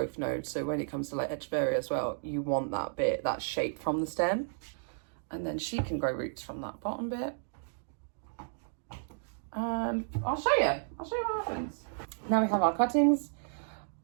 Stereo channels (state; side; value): silent; left; digital silence